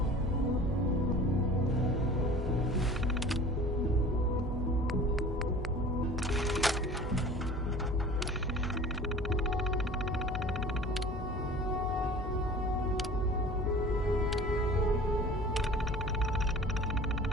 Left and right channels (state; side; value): normal; both; correlation 0.43